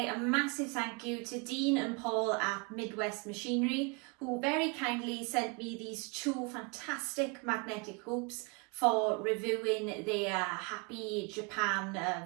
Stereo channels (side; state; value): left; quieter; 31.6 dB